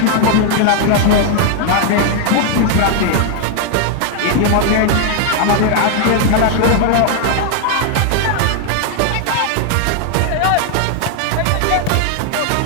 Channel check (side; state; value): both; different; correlation 0.00